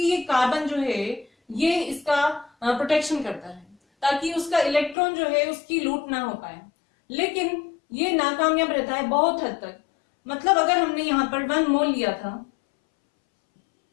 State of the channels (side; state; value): right; drops out; at 5.0 s